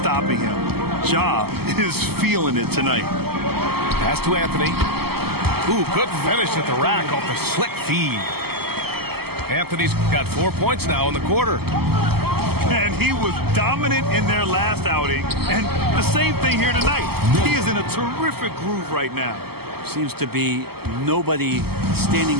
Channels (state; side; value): late; left; 0.96 ms